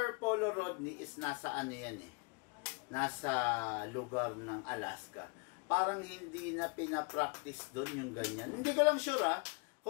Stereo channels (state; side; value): quieter; right; 33.8 dB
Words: Polo Rodney is nasa nasa lugar ng Alaska. Parang hindi na pinapractice doon yung ganyan. Hindi ko lang sure,